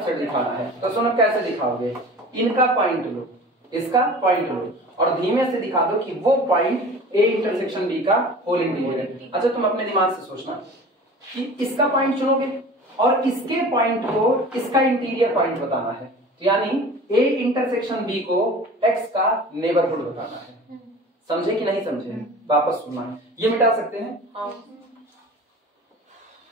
दिखाना है, तो सुनो कैसे दिखाओगे? इनका पॉइंट लो, इसका पॉइंट लो और धीमे से दिखा दो कि वो पॉइंट ए इंटरसेक्शन बी का होल इंटीरियर है। अच्छा तुम अपने दिमाग से सोचना कि इसका पॉइंट चुनोगे और इसके पॉइंट को इसका इंटीरियर पॉइंट बताना है, यानी ए इंटरसेक्शन बी को एक्स का नेबरहुड बताना है। समझे कि नहीं समझे? वापस सुनना है, ये मिटा सकते हैं।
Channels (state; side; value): normal; both; correlation 0.40